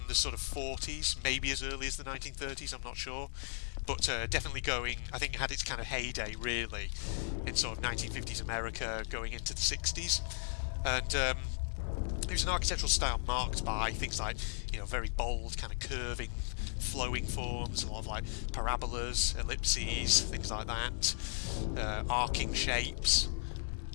the sort of 40s, maybe as early as the 1930s, I'm not sure. But definitely going, I think it had its kind of heyday, really, in sort of 1950s America, going into the 60s. And it was an architectural style marked by things like, you know, very bold, kind of curving, flowing forms, a lot of like parabolas, ellipses, things like that, arcing shapes.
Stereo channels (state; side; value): silent; right; 54 dB below the other